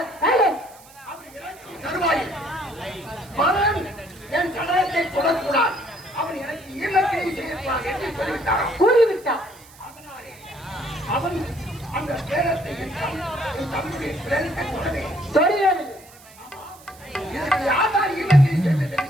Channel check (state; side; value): noise; right; hiss, 23 dB below the sound